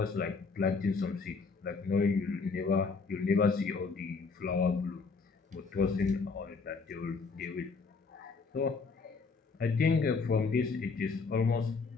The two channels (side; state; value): right; quieter; 4.6 dB